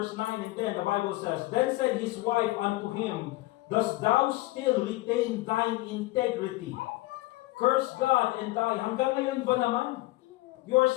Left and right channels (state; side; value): quieter; right; 19.9 dB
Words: 9 and 10, the Bible says, "Then said his wife unto him, Dost thou still retain thine integrity? Curse God and die." Hanggang ngayon ba naman? You are